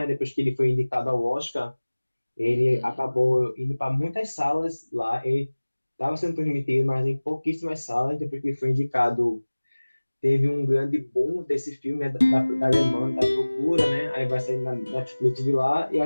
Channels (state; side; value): inverted; both; correlation -1.00